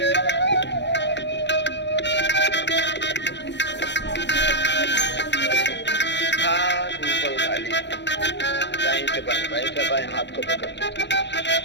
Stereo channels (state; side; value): late; right; 0.51 ms